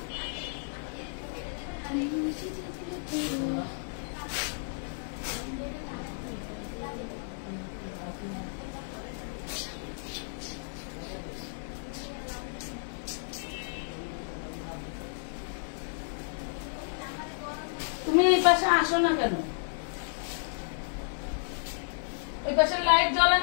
তুমি এই পাশে আসো না কেন ওই পাশে লাইট জ্বলে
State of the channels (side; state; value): right; silent; 55 dB below the other